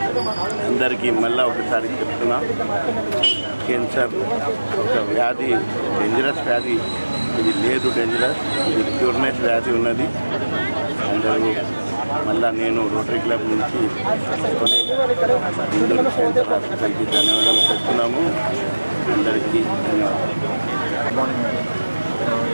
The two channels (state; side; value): inverted; both; correlation -1.00